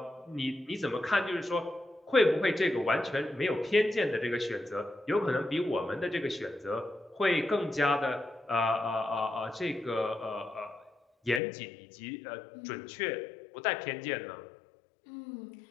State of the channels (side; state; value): right; drops out; at 11.4 s